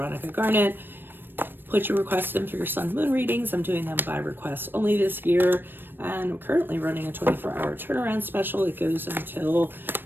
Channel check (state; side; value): late; left; 0.096 ms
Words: Garnet. Put your requests in for your sun moon readings. I'm doing them by request only this year. And I'm currently running a 24-hour turnaround special. It goes until